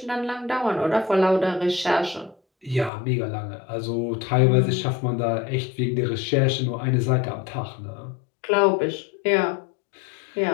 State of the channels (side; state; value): right; drops out; at 2.9 s